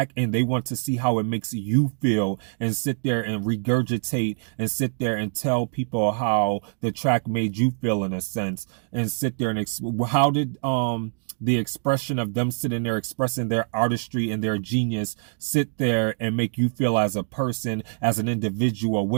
and they want to see how it makes you feel, and sit there and regurgitate and sit there and tell people how the track made you feel, in a sense, and sit there and how did the expression of them sitting there expressing their artistry and their genius sit there and make you feel as a person, as an individual?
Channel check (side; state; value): left; silent; 62 dB below the other